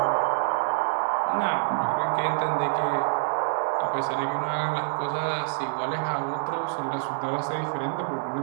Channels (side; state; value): left; silent; digital silence